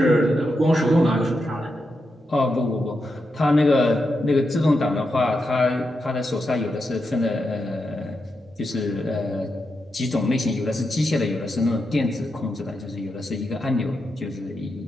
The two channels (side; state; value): both; normal; correlation 0.86